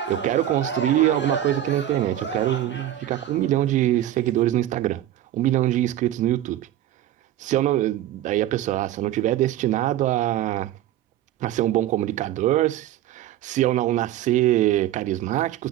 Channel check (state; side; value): quieter; left; 12.7 dB